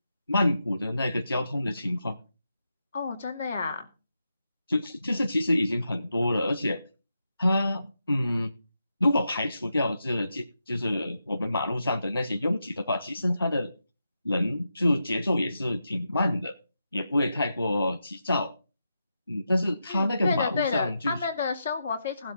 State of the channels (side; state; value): both; inverted; correlation -0.86